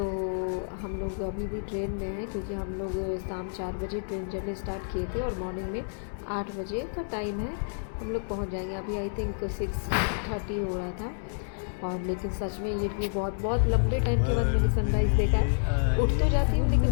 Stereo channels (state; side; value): silent; right; 58 dB below the other